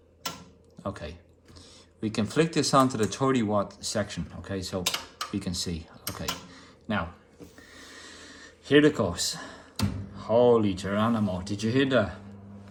Okay. We can flick this onto the 30 watt section, okay, so we can see. Okay, now, here it goes. Holy Geronimo, did you hear that?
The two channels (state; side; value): identical; both; correlation 1.00